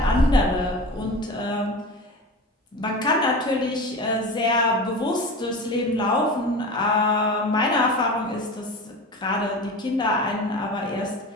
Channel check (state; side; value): normal; both; correlation 0.31